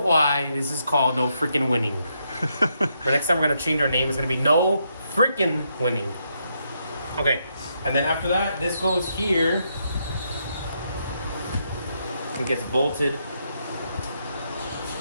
this is called No Freaking Winning. For next time we're gonna change our name. It's gonna be No Freaking Winning. Okay, and then after that, this goes here. It gets bolted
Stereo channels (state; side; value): inverted; both; correlation -0.79